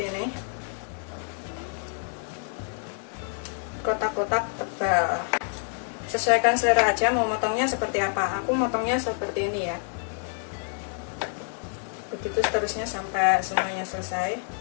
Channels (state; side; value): silent; right; 59 dB below the other